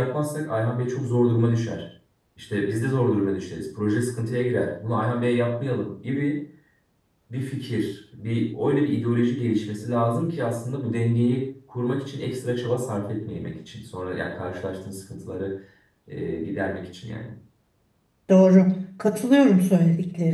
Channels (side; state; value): both; identical; correlation 1.00